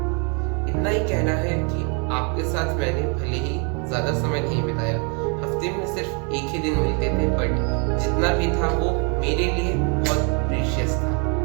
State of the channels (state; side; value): quieter; left; 36.2 dB